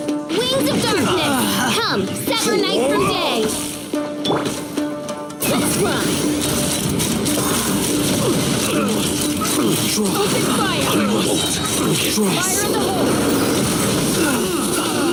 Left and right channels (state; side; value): identical; both; correlation 1.00